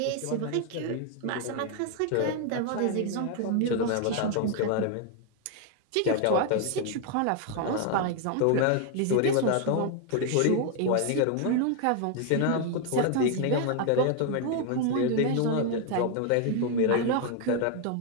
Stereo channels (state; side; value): different; both; correlation 0.00